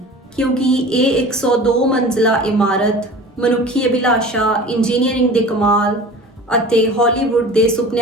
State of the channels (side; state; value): both; normal; correlation 0.39